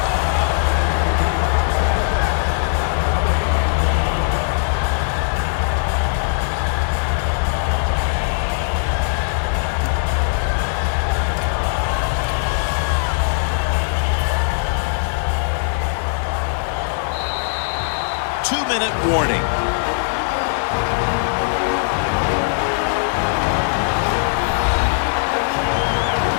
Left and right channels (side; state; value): right; silent; digital silence